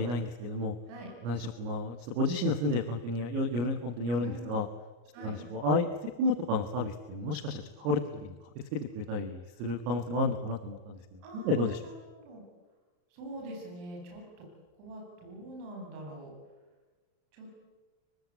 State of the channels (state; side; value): late; left; 34 ms